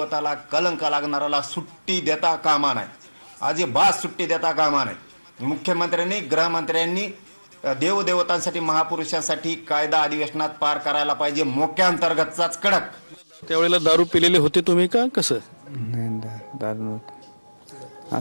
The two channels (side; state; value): both; inverted; correlation -1.00